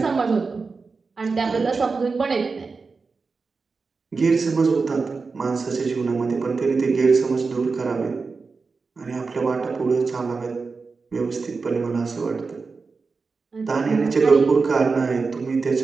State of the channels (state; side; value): quieter; left; 4.5 dB